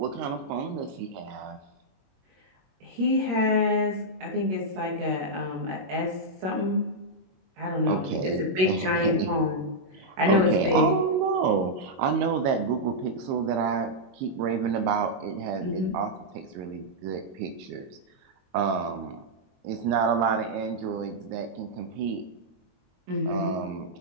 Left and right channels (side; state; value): left; late; 22 ms